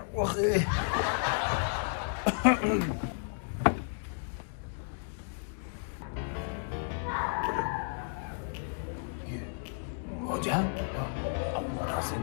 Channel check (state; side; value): silent; right; digital silence